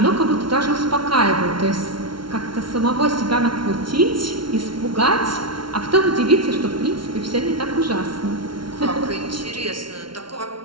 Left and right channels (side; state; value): left; late; 0.73 ms